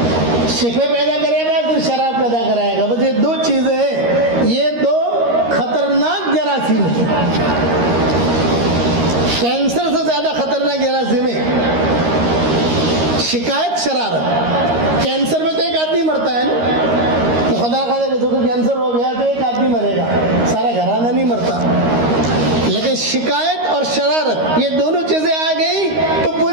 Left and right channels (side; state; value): left; late; 13 ms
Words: شکوے پیدا کرے گا، پھر شرارت پیدا کرائے گا۔ بس یہ 2 چیزیں ہیں، یہ 2 خطرناک جراثیم ہیں، کینسر سے زیادہ خطرناک جراثیم ہے شکایت، شرارت۔ کینسر میں تو ایک آدمی مرتا ہے نا، تو خدا خدا کسی کو کینسر ہو گیا تو ایک آدمی مرے گا، سارا گھرانہ نہیں مرتا۔ لیکن شکایت اور شرارت، یہ دونوں چیزیں آ گئی تو